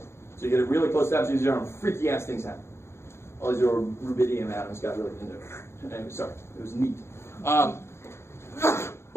So you get it really close to absolute 0, and freaky ass things happen. All these little rubidium atoms got really into it. Anyway, sorry, it was neat.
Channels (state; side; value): late; right; 0.13 ms